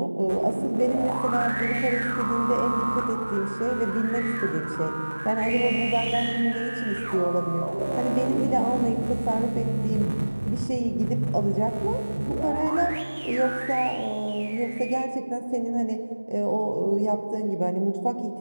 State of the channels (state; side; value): inverted; both; correlation -1.00